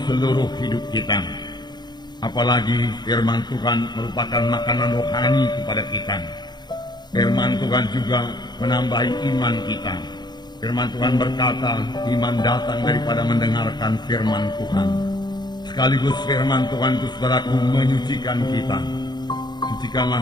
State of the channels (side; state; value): right; late; 0.21 ms